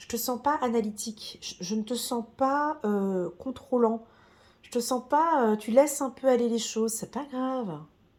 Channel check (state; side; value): identical; both; correlation 1.00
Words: te sens pas analytique. Je ne te sens pas contrôlant. Je te sens pas. Tu laisses un peu aller les choses. C'est pas grave.